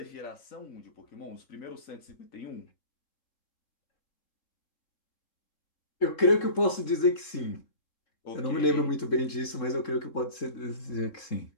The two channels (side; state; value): right; late; 3.7 ms